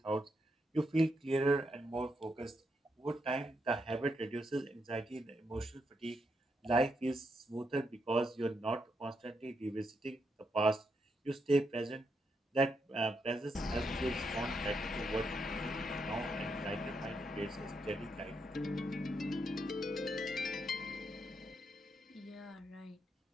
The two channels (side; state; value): both; normal; correlation 0.80